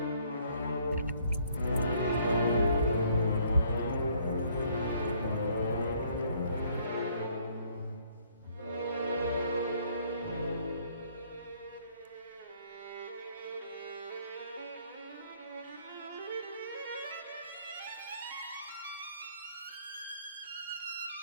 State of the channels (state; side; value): inverted; both; correlation -0.64